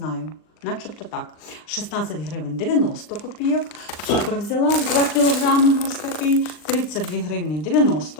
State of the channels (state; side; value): late; right; 39 ms